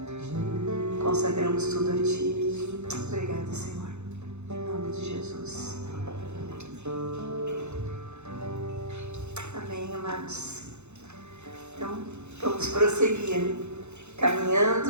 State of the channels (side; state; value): left; late; 0.82 ms